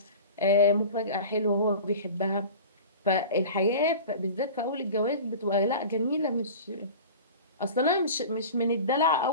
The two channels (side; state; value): both; inverted; correlation -0.36